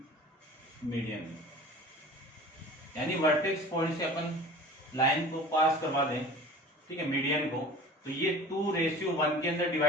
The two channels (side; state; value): both; normal; correlation 0.41